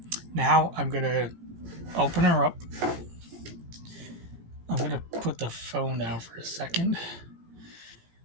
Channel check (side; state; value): left; late; 18 ms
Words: Now I'm gonna open her up. I'm gonna put the phone down for a second.